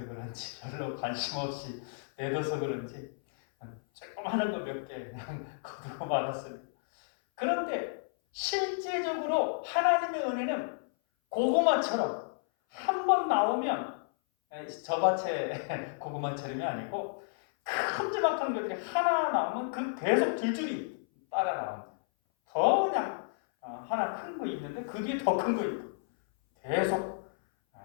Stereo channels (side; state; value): right; silent; 56 dB below the other